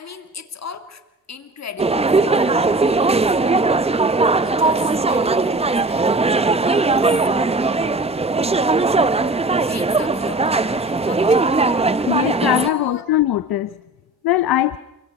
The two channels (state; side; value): normal; both; correlation 0.39